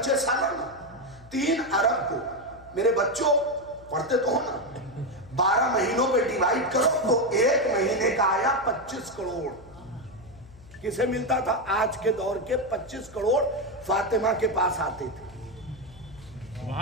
سالانہ. 3 ارب کو میرے بچوں پڑھتے تو ہو نا، 12 مہینوں پہ ڈیوائیڈ کرو تو ایک مہینے کا آیا 25 کروڑ. کسے ملتا تھا؟ آج کے دور کے 25 کروڑ فاطمہ کے پاس آتے تھے.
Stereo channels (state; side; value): noise; left; hum, 22 dB below the sound